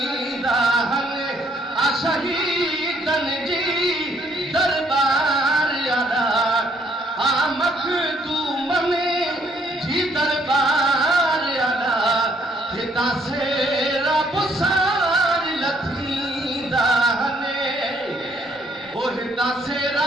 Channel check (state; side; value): normal; both; correlation 0.67